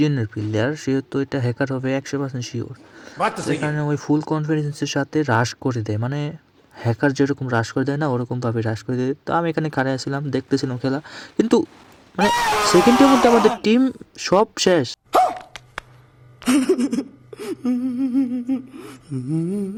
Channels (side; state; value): both; identical; correlation 1.00